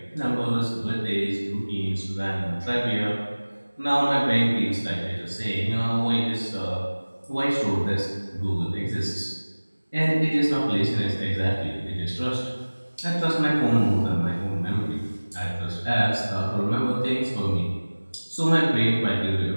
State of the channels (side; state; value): both; inverted; correlation -1.00